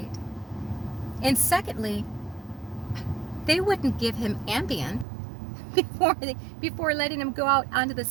And secondly, they wouldn't give him Ambien before letting him go out onto the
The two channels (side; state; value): left; drops out; at 5.1 s